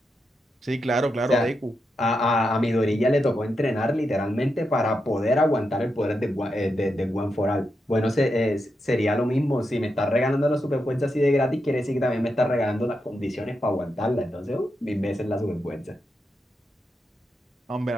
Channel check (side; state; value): both; normal; correlation 0.86